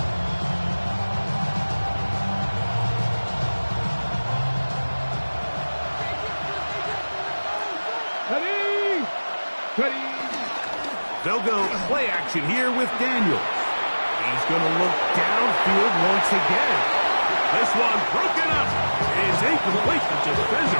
They'll go play action here with Daniels. He's going to look downfield once again. This one broken up. It's incomplete. The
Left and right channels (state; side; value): inverted; both; correlation -1.00